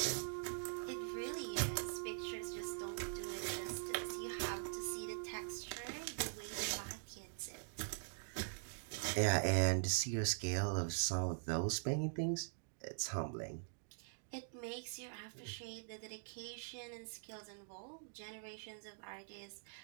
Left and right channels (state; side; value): silent; left; digital silence